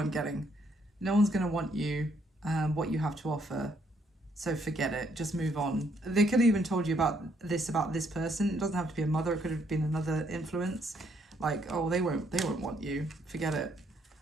getting. No one's going to want you, what you have to offer. So forget it, just move on. They could have even told you about this person. It doesn't have to be a mother, it could have been another influence. Like, oh, they won't want you, forget it.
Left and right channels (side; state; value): both; normal; correlation 0.70